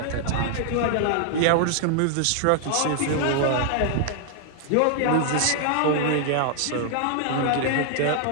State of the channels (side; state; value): both; different; correlation 0.00